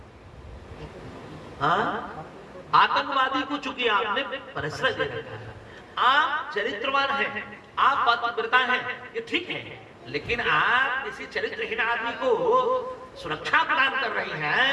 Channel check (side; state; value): both; identical; correlation 1.00